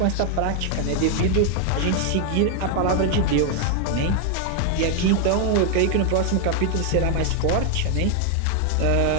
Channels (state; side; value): different; both; correlation 0.01